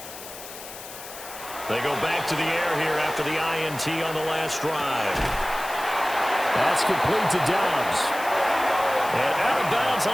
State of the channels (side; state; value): left; noise; hiss, 13 dB below the sound